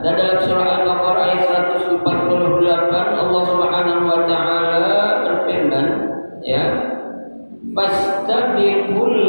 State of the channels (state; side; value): inverted; both; correlation -1.00